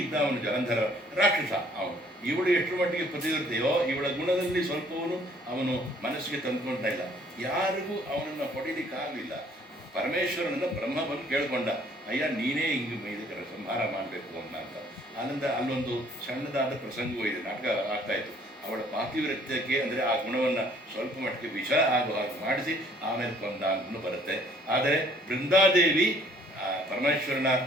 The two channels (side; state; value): both; normal; correlation 0.60